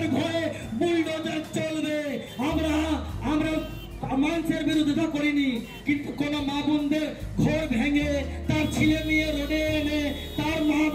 ঘরে বুলডোজার চলবে। আমরা মানুষের বিরোধিতা করিনি, কিন্তু কোন মা বোনদের ঘর ভেঙে তার ছেলে মেয়ে রোডে এনে তার মা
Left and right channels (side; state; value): both; identical; correlation 1.00